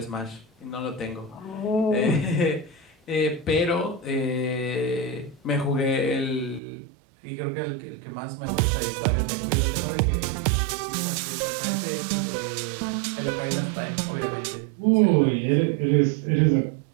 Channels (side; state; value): left; drops out; at 6.6 s